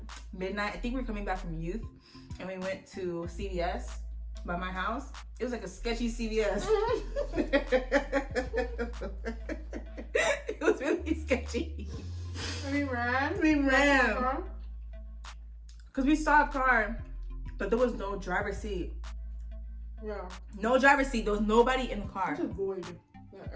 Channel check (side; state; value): both; identical; correlation 1.00